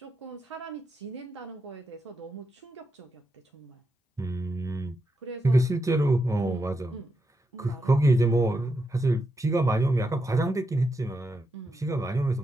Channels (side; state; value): both; normal; correlation 0.84